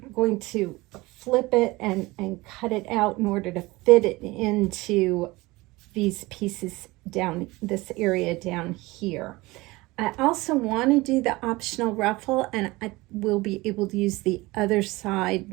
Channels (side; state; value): left; quieter; 21.4 dB